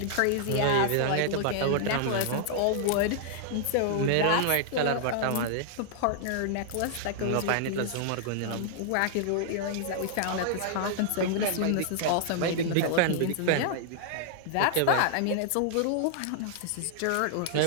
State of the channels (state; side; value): different; both; correlation -0.01